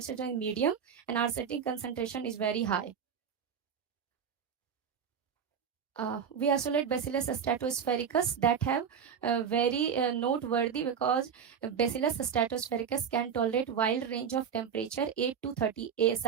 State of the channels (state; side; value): quieter; left; 7.3 dB